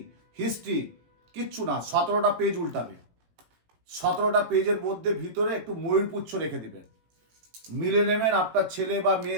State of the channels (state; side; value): late; left; 18 ms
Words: হিস্ট্রি, কিচ্ছু না, 17টা পেজ উল্টাবে, 17টা পেজের মধ্যে ভিতরে একটু ময়ূরপুচ্ছ রেখে দেবেন, মিলে নেবেন, আপনার ছেলে বা